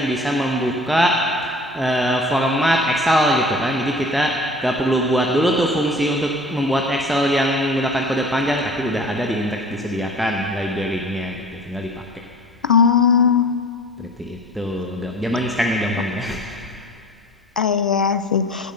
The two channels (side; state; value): both; normal; correlation 0.44